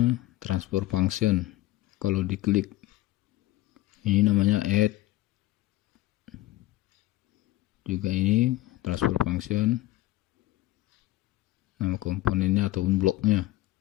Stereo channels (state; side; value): quieter; right; 16.6 dB